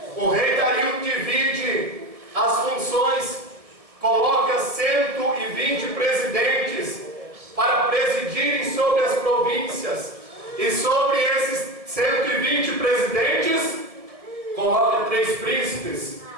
O rei Dario divide as funções, coloca 120 presidentes para presidirem sobre as províncias, e sobre esses 120 presidentes coloca 3 príncipes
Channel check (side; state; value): left; late; 1.6 ms